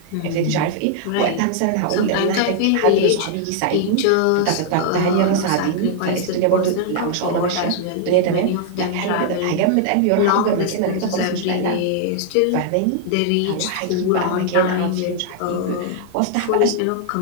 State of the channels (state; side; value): different; both; correlation 0.00